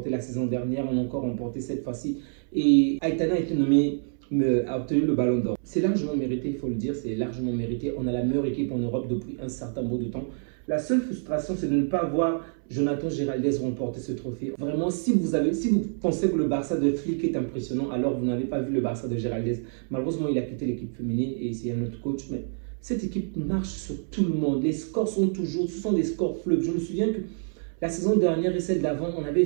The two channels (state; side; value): silent; left; 60 dB below the other